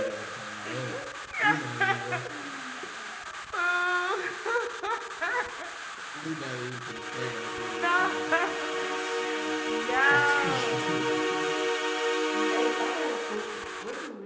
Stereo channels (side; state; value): both; identical; correlation 1.00